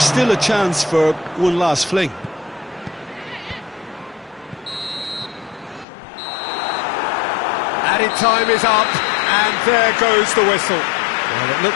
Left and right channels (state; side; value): drops out; right; at 5.9 s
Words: still a chance for one last fling. Added time is up, and there goes the whistle. Well, it